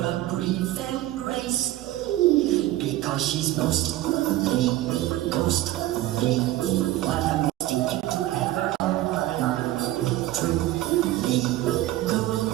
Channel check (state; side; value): quieter; left; 15.5 dB